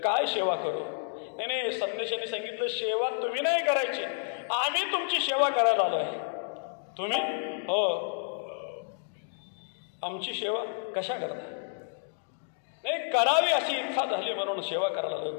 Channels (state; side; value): silent; right; digital silence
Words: काय सेवा करू? नाही, संन्याशाने सांगितलं सेवा तुम्ही नाही करायची, आम्ही तुमची सेवा करायला आलो आहे. तुम्ही? हो. आमची सेवा कशा करता? नाही, करावी अशी इच्छा झाली म्हणून सेवा करायला आलो.